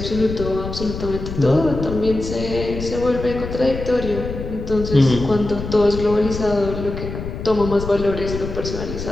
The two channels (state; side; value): noise; left; rumble, 7 dB below the sound